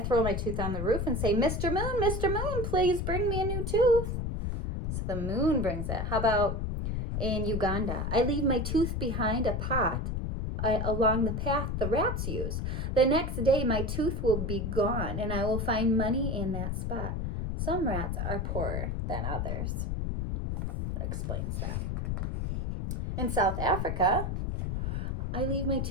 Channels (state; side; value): noise; left; rumble, 2 dB below the sound